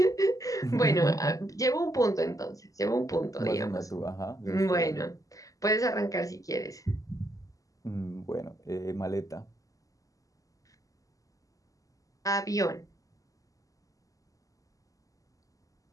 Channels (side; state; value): right; late; 0.17 ms